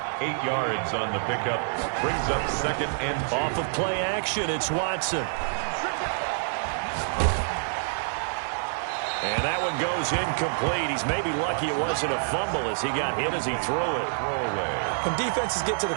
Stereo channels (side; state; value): left; silent; 60 dB below the other